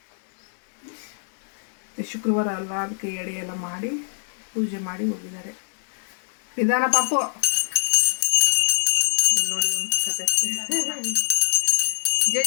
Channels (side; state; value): right; silent; 63 dB below the other